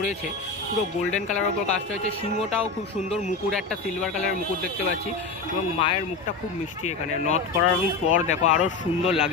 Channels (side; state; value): right; quieter; 4.1 dB